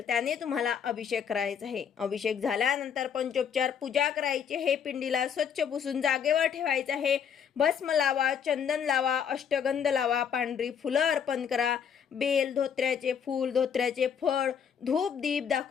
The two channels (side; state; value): right; quieter; 7.7 dB